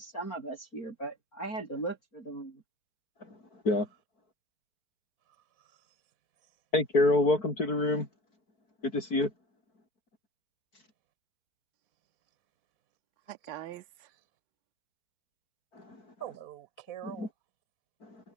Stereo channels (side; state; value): right; late; 4.5 ms